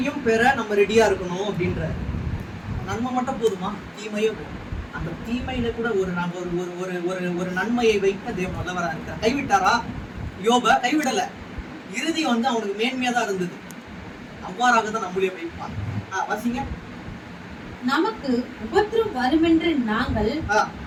பெற நம்ம ரெடியா இருக்கணும் அப்படின்ற. நன்மை மட்டும் போதுமா? தீமையே போதும். அந்த தீமையில கூட ஒரு நன்மையை வைக்க தேவன் வல்லவரா இருக்கார். கைவிட்டாரா? யோப கைவிடல. இறுதி வந்து அவனுக்கு மேன்மையா தான் இருந்தது. அவ்வாறாக தான் நம்மளே வைப்பார். வாசிங்க. நமக்கு உபத்திரம் வருமென்று நாங்கள்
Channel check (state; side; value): identical; both; correlation 1.00